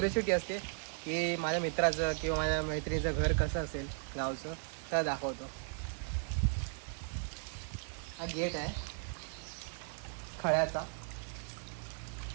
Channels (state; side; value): silent; left; 53 dB below the other